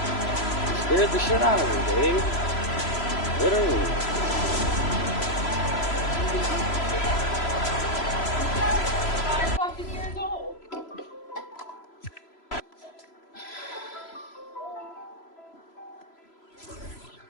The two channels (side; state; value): right; late; 3.0 ms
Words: Scared the shit out of her, Dave. Literally.